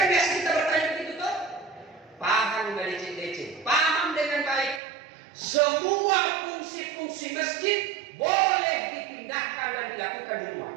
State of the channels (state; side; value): drops out; left; at 4.8 s